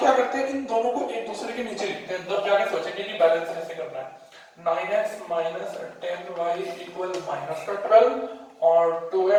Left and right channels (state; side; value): identical; both; correlation 1.00